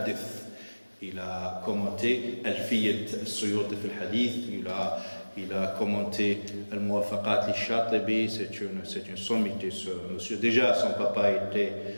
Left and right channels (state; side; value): inverted; both; correlation -1.00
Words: il a commenté Al-Fiyat al-Suyuti fil Hadith, il a commenté Al-Muwafaqat al-Shatibi, c'est une sommité ce monsieur. Déjà son papa était